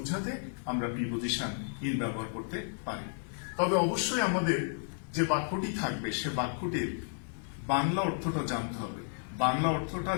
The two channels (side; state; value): right; silent; 56 dB below the other